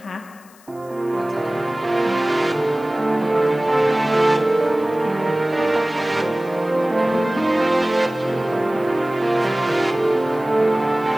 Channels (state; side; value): noise; left; hiss, 27 dB below the sound